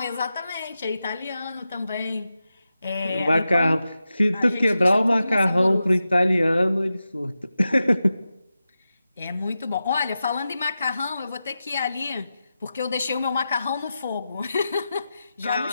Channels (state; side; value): inverted; both; correlation -0.92